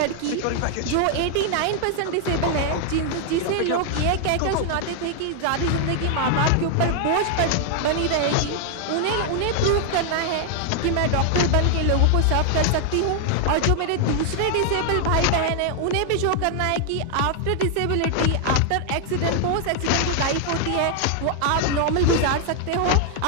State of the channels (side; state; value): both; different; correlation 0.00